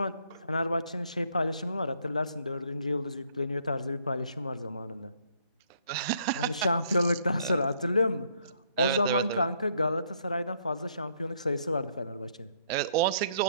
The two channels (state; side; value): inverted; both; correlation -0.67